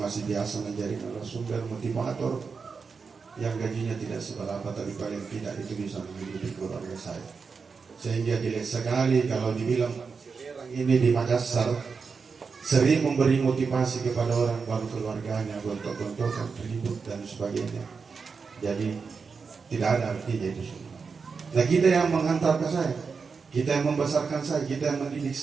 masih biasa menjadi narasumber motivator yang gajinya tidak seberapa, tapi paling tidak itu bisa menghidupi keluarga saya. Sehingga dilihat sekali kalau dibilang ini di Makassar sering memberi motivasi kepada orang baru keluarganya, gontok-gontokan, ribut dan sebagainya. Jadi tidak ada artinya itu semua. Nah, kita yang menghantarkan saya, kita yang membesarkan saya, kita yang mendidik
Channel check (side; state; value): left; quieter; 5.2 dB